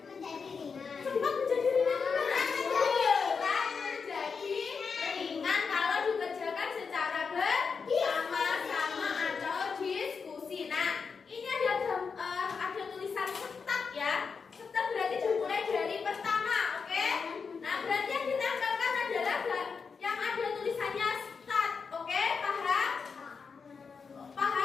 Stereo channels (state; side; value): quieter; right; 5.5 dB